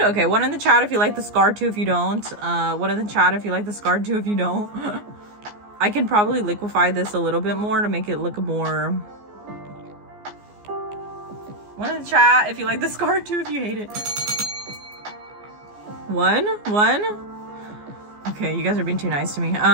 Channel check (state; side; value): late; left; 14 ms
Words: Okay, one in the chat if you like the scar too, if you don't. One in the chat if you like the scar too, if you don't. I can probably liquefy this a little bit more to make it look more. One in the chat if you like the scar too, if you hate it. One. Okay, you guys are being too nice to me.